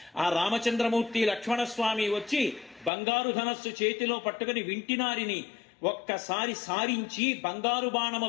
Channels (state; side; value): drops out; right; at 2.9 s